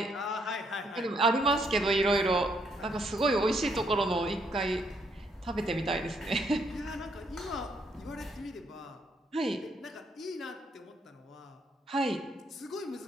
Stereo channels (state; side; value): normal; both; correlation 0.72